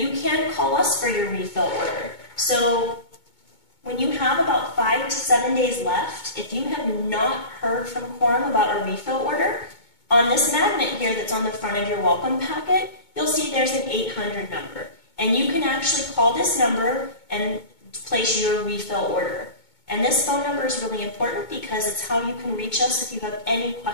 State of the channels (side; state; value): right; late; 2.2 ms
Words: can call us for your refill order. So when you have about 5 to 7 days left, if you have not heard from Quorum about a refill order, on this magnet here that's on the front of your welcome packet, you'll see there's an 800 number. And you can actually call this number and place your refill order. And this phone number is really important because it's how you can reach us if you have any